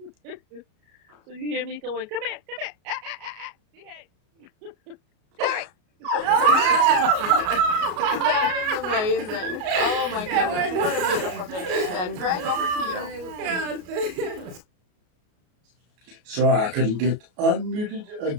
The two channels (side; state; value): left; late; 33 ms